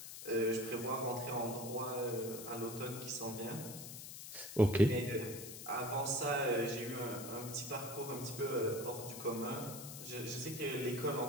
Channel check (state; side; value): noise; left; hiss, 10 dB below the sound